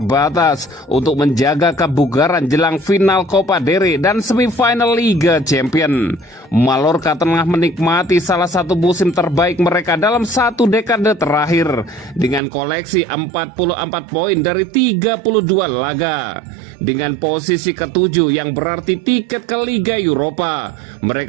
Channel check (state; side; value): drops out; left; at 12.4 s